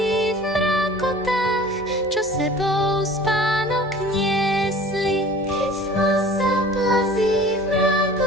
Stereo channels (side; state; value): both; normal; correlation 0.45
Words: v mrákotách, čo sebou spánok niesli. Keď tma sa plazí v